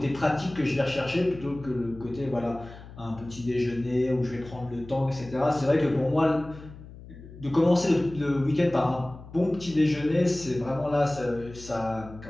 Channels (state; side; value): noise; left; hum, 17 dB below the sound